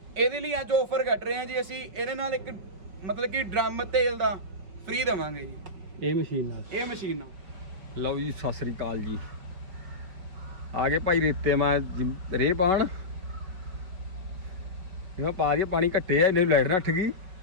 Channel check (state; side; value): late; left; 5.5 ms